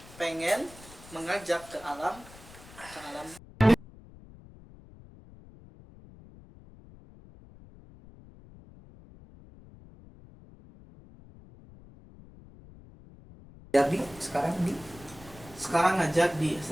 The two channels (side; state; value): left; noise; rumble, 20 dB below the sound